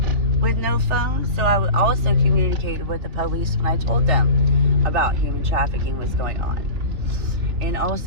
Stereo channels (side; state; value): left; late; 3.3 ms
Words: with no phone. So I also communicated with the police when I told them about human trafficking was going on. And